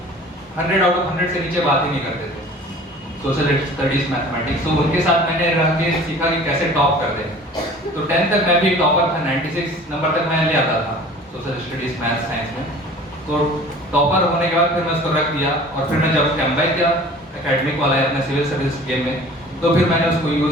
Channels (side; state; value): both; normal; correlation 0.45